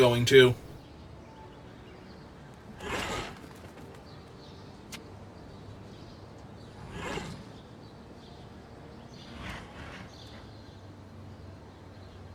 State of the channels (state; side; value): identical; both; correlation 1.00